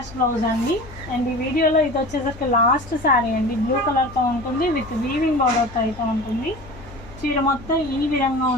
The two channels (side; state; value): left; noise; hum, 18 dB below the sound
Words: బ్లౌజ్ అండి. అండ్ ఈ వీడియోలో ఇది వచ్చేసరికి లాస్ట్ శారీ అండి. బ్లూ కలర్తో ఉంటుంది. విత్ వీవింగ్ బార్డర్తో అయితే ఉంటుంది. చీర మొత్తం ఈ విధంగా